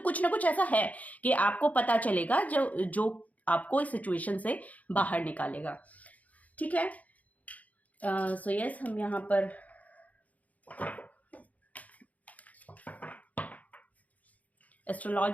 कुछ ना कुछ ऐसा है कि आपको पता चलेगा जो आपको इस सिचुएशन से बाहर निकालेगा। ठीक है, सो यस, हम यहाँ पर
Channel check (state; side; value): late; right; 0.073 ms